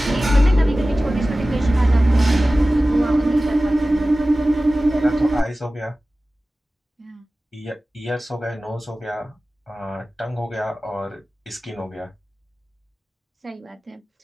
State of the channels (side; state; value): both; normal; correlation 0.96